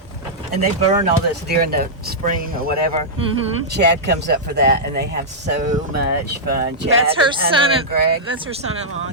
And they burn all this during the spring or whatever. Chad comes up for that, and they have so much fun. Chad That's her and Hunter son. and Greg. That's her son-in-law.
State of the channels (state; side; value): normal; both; correlation -0.10